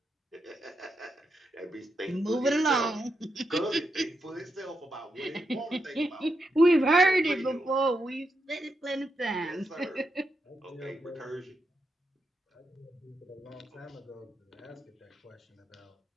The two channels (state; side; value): normal; both; correlation 0.84